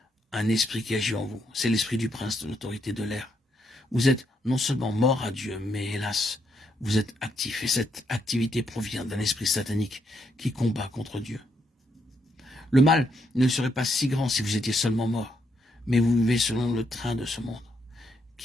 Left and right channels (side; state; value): both; normal; correlation 0.77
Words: un esprit qui agit en vous. C'est l'esprit du prince de l'autorité de l'air. Vous êtes non seulement mort à Dieu, mais hélas, vous êtes actif. Et cette activité provient d'un esprit satanique qui combat contre Dieu. Le mal ne serait pas si grand si vous étiez seulement mort. Mais vous vivez selon le train de ce monde,